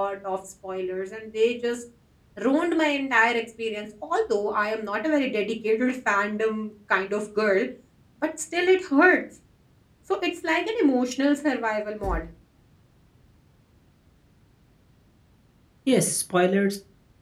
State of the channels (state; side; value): identical; both; correlation 1.00